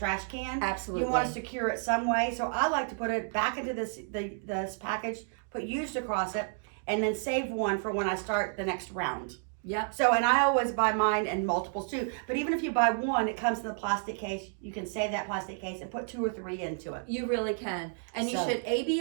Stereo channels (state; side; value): silent; left; 57 dB below the other